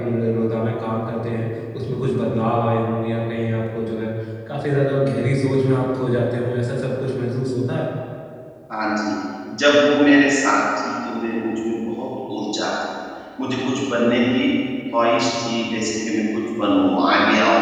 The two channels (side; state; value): both; identical; correlation 1.00